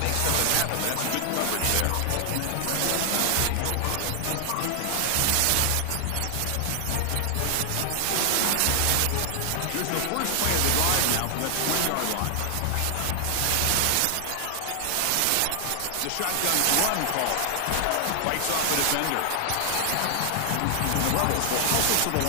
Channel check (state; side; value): different; both; correlation 0.00